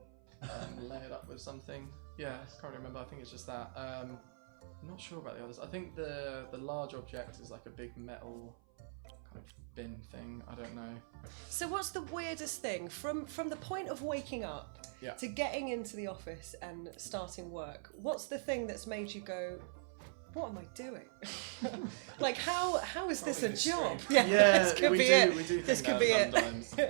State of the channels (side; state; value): left; silent; 52 dB below the other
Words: and lay it up with something. Yeah, Nice. I can't remember. I think it's just that. I'm not sure about the others. I think the large object is like a big metal kind of bin thing. I don't know. So what's the weirdest thing from the point of waking up Yeah. to getting into the office and starting work? What's the thing that's made you go, what am I doing? Like how is Probably this this a job? stream. this could we be do. it. We do This think could be that it.